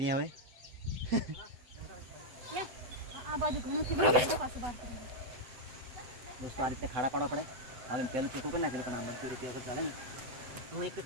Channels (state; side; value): late; left; 7.9 ms